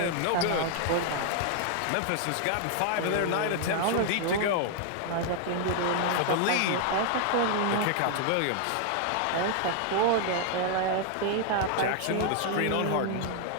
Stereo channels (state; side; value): different; both; correlation 0.00